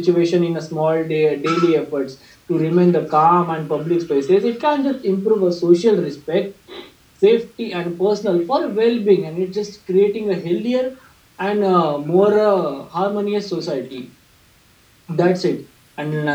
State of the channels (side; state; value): both; identical; correlation 1.00